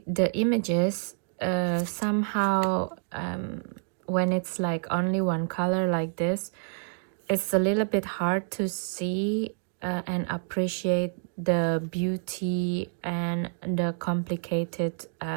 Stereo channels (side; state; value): left; silent; digital silence